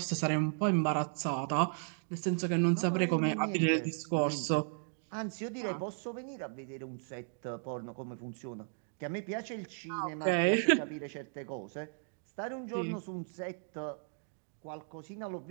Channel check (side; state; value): left; silent; 54 dB below the other